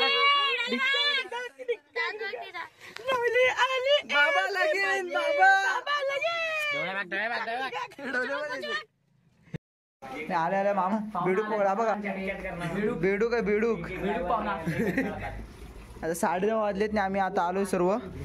बाबा लगीन, बाबा आले आले मामा. बेडूक पकडा बघा. बेडूक आहे बेडूक. आता 9:30 वाजलेत ना. आम्ही आता आलोय सर्व.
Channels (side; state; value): both; identical; correlation 1.00